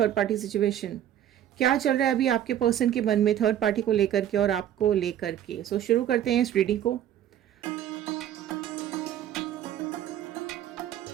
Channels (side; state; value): left; quieter; 11.1 dB